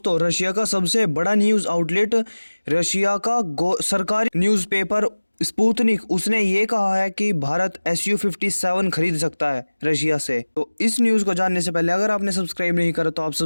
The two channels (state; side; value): inverted; both; correlation -1.00